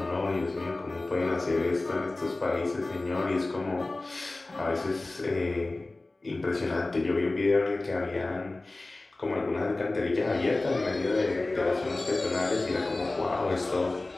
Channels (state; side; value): quieter; right; 3.0 dB